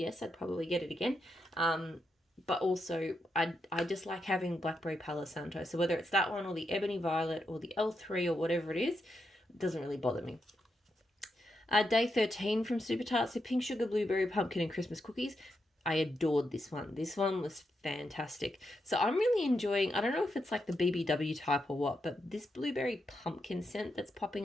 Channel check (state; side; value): normal; both; correlation 0.84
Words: I'd probably get it again. But also I just like having blackberry Palo Santo. So whether it's that one or the Ebony Violet or the L3 or whatever it is, it doesn't really bother me. Day 13 from Super Tarts, so pink sugar, blueberry, pumpkin, and Christmas cookies. I adored this one. This one was fantastic. So I'm really enjoying, I don't know if it's like the BBW type or what, but this blueberry pumpkin scent that's